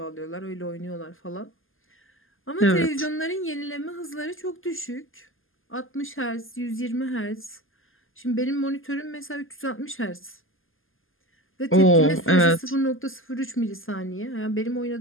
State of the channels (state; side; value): late; right; 0.59 ms